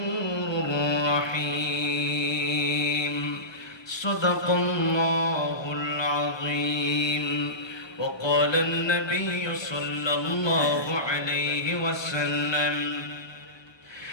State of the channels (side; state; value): right; late; 1.2 ms